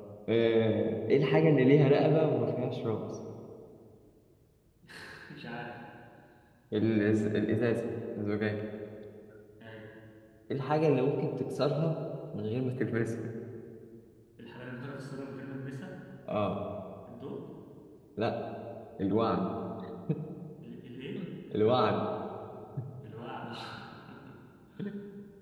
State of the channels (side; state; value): both; identical; correlation 1.00